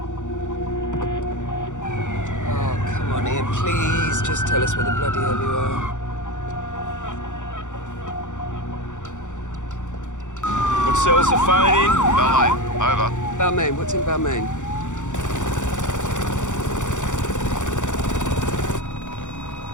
Oh, come on, Ian, please. Just tell us where the bloody hell you are. What cell's the phone in? Balmain, over. Balmain, what's in Balmain?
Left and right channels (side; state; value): right; late; 0.85 ms